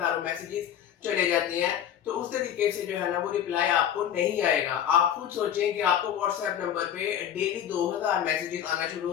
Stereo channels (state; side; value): quieter; right; 9.8 dB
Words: मैसेजेस चले जाते हैं। तो उस तरीके से जो है ना वो रिप्लाई आपको नहीं आएगा। आप खुद सोचें कि आपको व्हाट्सएप नंबर पे डेली 2000 मैसेजेस आना शुरू